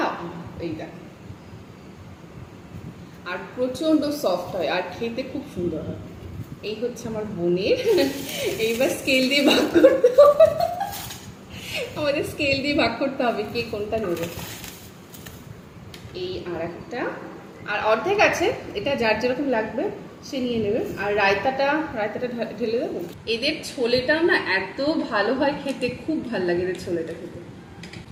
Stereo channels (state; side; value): identical; both; correlation 1.00